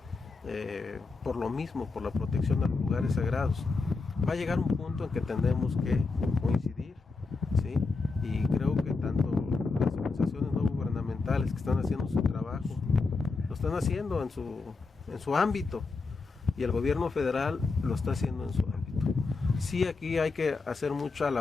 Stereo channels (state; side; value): quieter; right; 4.1 dB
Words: por lo mismo, por la protección de los lugares sagrados. Va a llegar un punto en que tendremos que coincidir, ¿sí? Y creo que tanto las organizaciones no gubernamentales que están haciendo su trabajo lo están haciendo en su ámbito y el gobierno federal lo está haciendo en su ámbito. Sí, aquí hay que hacer mucha